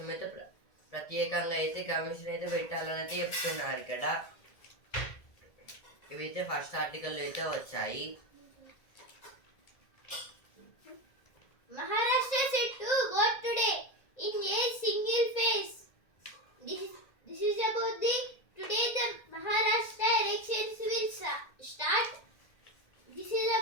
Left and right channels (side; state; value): right; late; 1.7 ms